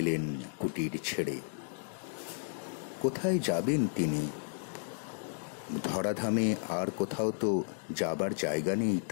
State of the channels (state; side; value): silent; right; digital silence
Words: কুটির ছেড়ে। কোথায় যাবেন তিনি? ধরাধামে আর কোথাও তো যাবার জায়গা নেই